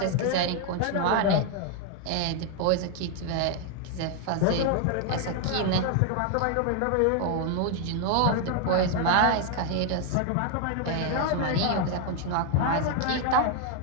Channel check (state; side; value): different; both; correlation 0.01